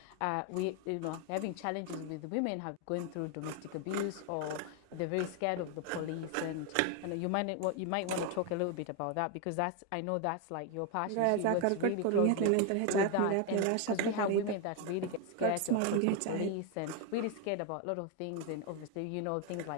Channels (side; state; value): both; different; correlation 0.01